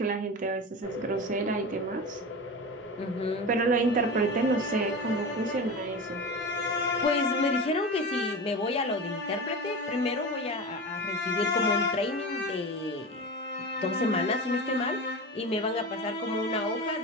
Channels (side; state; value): both; normal; correlation 0.27